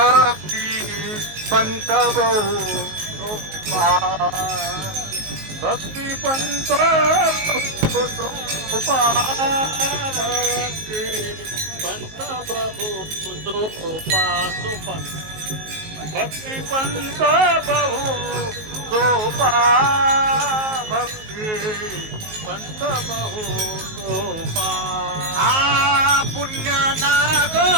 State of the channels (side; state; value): left; late; 19 ms